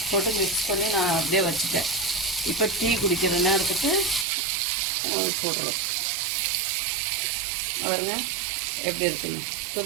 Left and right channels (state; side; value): drops out; left; at 4.2 s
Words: போட்டு மிக்ஸ் பண்ணி நான் அப்படியே வச்சுட்டேன். இப்போ டீ குடிக்கிற நேரத்துக்கு போடணும். பாருங்க எப்படி இருக்குங்க,